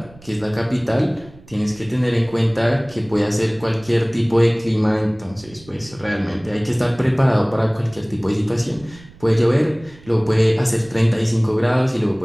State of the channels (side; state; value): right; noise; rumble, 23 dB below the sound